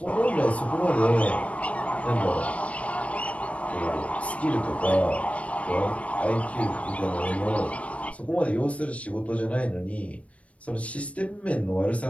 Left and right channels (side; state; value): right; late; 0.064 ms